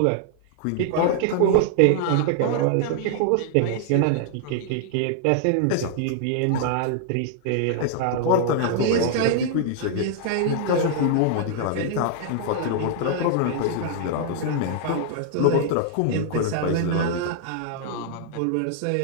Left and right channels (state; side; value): different; both; correlation -0.01